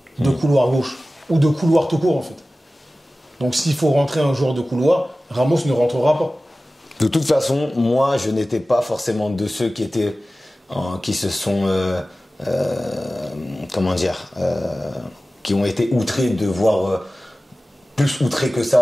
De couloir gauche. Ou de couloir tout court, en fait. Donc, s'il faut rentrer un joueur de couloir, Ramos ne rentrera pas. De toute façon, moi je n'étais pas forcément de ceux qui se sont comment dire, qui ont été outrés de voir, plus outrés que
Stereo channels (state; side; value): normal; both; correlation 0.96